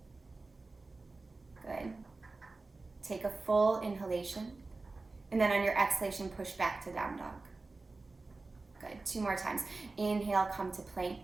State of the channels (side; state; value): left; quieter; 3.5 dB